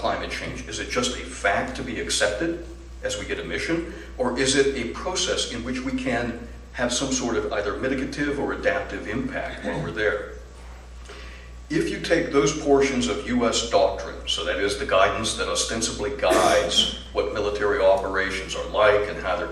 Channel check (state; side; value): identical; both; correlation 1.00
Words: change? Is it just a fact to be accepted as we get a mission? Or is it a process in which we can have some sort of either mitigative or adaptive impact while we're there? If you take those portions of U.S. doctrine, so that is the guidance that ostensibly guides what military operations are like and how they're